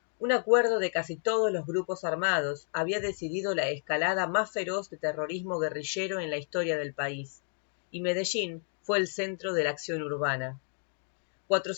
Un acuerdo de casi todos los grupos armados había decidido la escalada más feroz de terrorismo guerrillero en la historia del país, y Medellín fue el centro de la acción urbana.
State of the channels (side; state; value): right; silent; 57 dB below the other